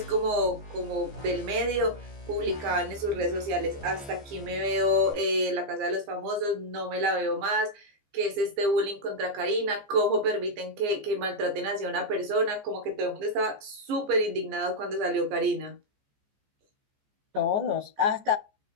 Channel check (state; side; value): late; left; 14 ms